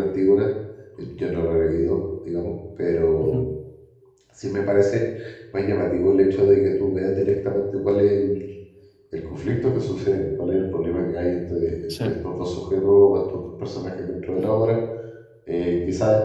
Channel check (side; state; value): both; identical; correlation 1.00